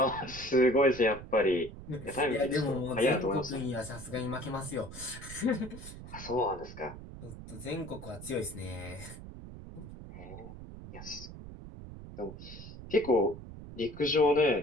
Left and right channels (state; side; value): noise; right; rumble, 13 dB below the sound